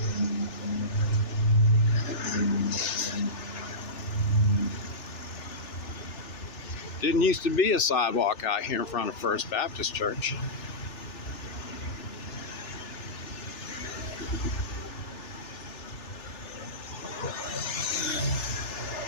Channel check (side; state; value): right; late; 3.4 ms